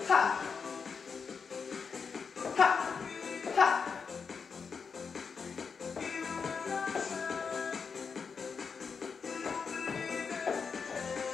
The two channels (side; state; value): right; quieter; 5.7 dB